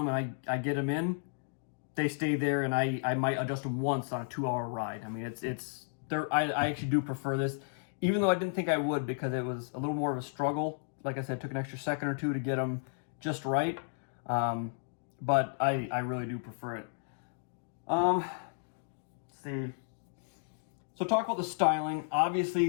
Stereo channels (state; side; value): silent; right; digital silence